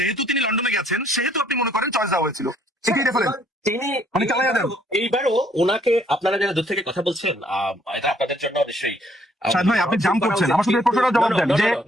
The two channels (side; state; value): both; normal; correlation 0.65